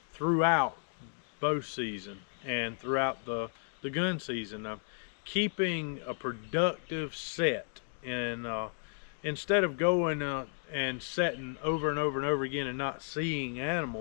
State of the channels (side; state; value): right; silent; 55 dB below the other